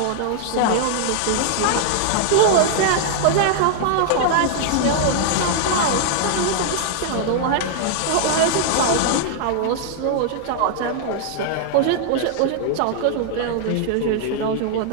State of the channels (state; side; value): different; both; correlation 0.00